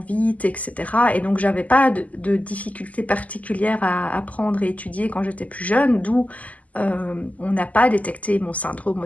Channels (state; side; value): late; right; 0.074 ms